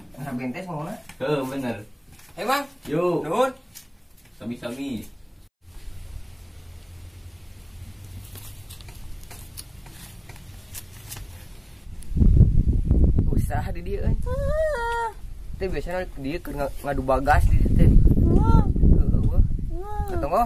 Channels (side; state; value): both; identical; correlation 1.00